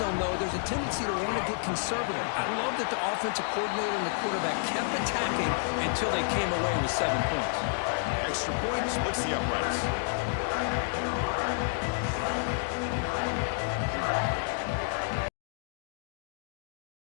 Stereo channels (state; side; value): silent; right; digital silence